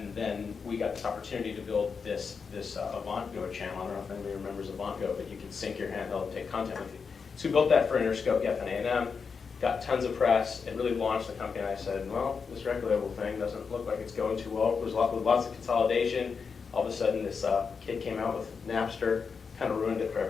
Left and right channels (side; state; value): right; quieter; 5.6 dB